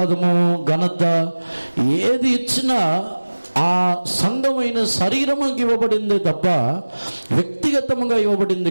ఘనత ఏది ఇచ్చినా ఆ సంఘమైన శరీరముకి ఇవ్వబడిందే తప్ప వ్యక్తిగతముగా ఇవ్వబడింది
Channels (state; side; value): inverted; both; correlation -1.00